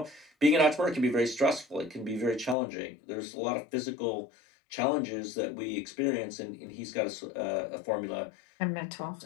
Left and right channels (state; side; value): drops out; right; at 2.6 s